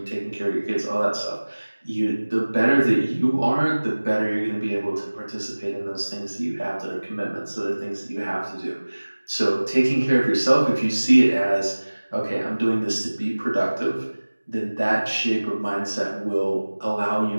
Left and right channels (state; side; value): inverted; both; correlation -1.00